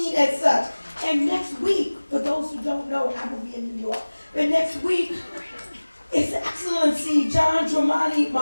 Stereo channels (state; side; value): inverted; both; correlation -1.00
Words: as such. And next week, for those who don't know, I will be in New York, but next week, His Excellency John Dramani